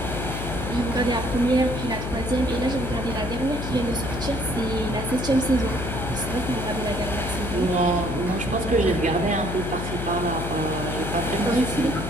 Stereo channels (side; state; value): left; noise; hum, 5 dB below the sound